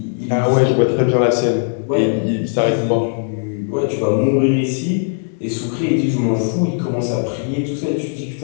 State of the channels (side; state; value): right; silent; digital silence